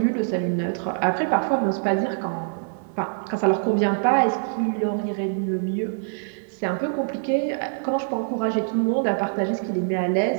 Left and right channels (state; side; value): silent; left; digital silence